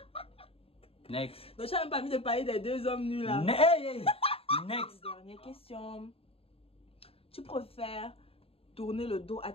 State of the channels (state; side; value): late; right; 0.28 ms